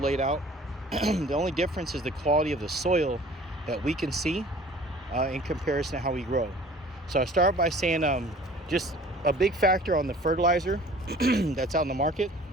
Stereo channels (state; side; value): normal; both; correlation 0.48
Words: out. The only difference is the quality of the soil that we can see in comparison to how we grow. So I start by saying just a big factor on the fertilizer that's out in the market.